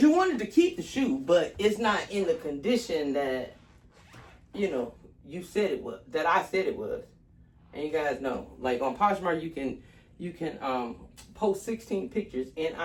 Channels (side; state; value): both; identical; correlation 1.00